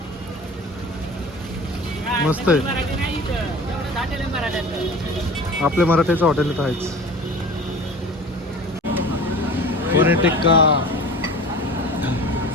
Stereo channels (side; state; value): both; normal; correlation 0.39